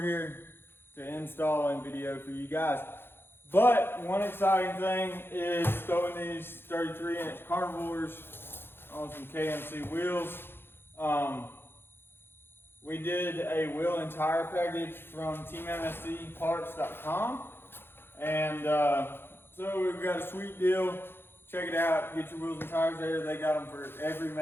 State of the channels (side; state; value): right; late; 0.11 ms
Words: here to install and video for you guys. But one exciting thing is throwing these 33-inch carnivores on some KMC wheels. We did a wheel and tire package from teammscparts.com, and so we've got a sweet deal. Check it out, get your wheels and tires there. They got them for every